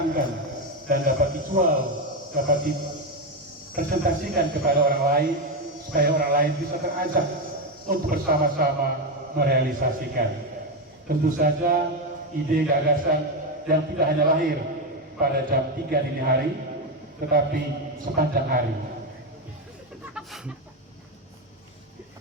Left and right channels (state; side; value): normal; both; correlation 0.10